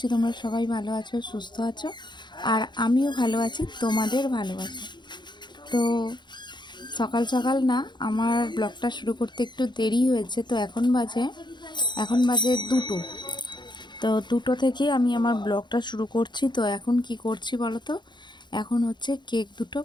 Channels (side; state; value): right; late; 0.22 ms